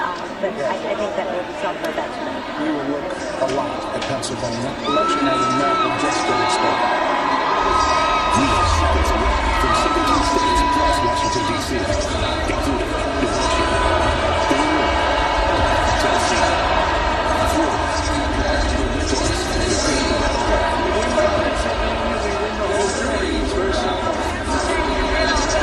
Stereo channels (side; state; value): both; identical; correlation 1.00